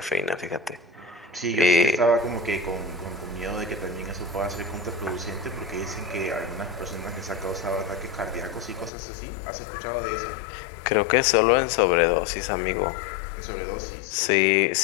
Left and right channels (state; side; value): drops out; right; at 8.9 s